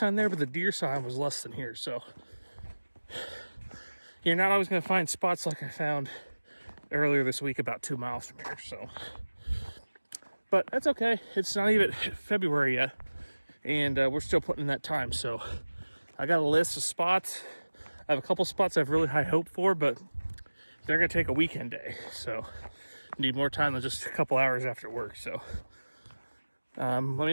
there, but the deer sign was less than here. So you're not always going to find spots like I found earlier this week about 2 miles from here. So, but that's okay. It's not even February yet, and we're still putting in that time. So I got a list of spots. I have a couple spots I have really high hope for, but they're going to take a weekend day. So need more time than just a couple hours after work. So let me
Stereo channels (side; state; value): both; inverted; correlation -1.00